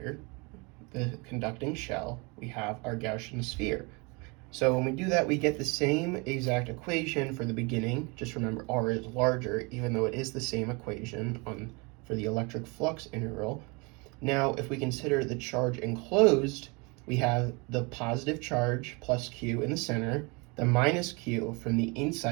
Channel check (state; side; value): quieter; left; 29.2 dB